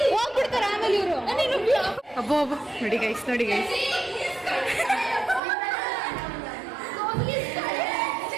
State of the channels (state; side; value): drops out; left; at 5.4 s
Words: ಹೋಗ್ಬಿಡ್ತಾರ ಆಮೇಲೆ ಇವರು. ಅಬ್ಬೋ ಅಬ್ಬೋ, ನೋಡಿ ಗೈಸ್, ನೋಡಿ ಗೈಸ್.